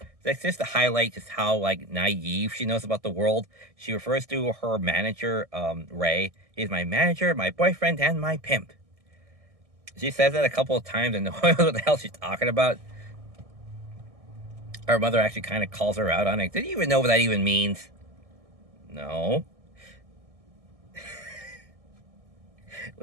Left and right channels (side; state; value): left; late; 1.6 ms